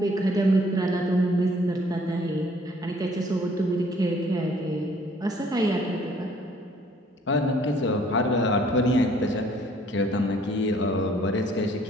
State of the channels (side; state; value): both; normal; correlation 0.59